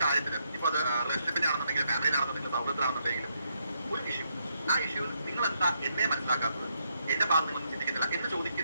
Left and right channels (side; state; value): both; inverted; correlation -0.77